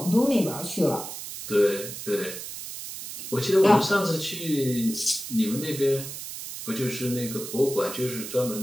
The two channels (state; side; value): noise; right; hiss, 9 dB below the sound